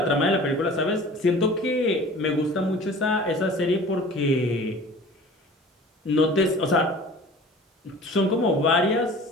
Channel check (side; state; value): both; normal; correlation 0.43